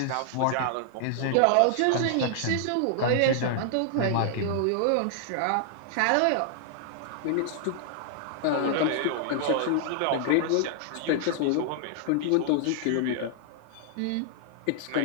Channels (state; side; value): different; both; correlation 0.00